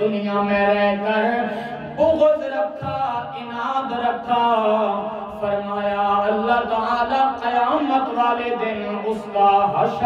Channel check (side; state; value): both; identical; correlation 1.00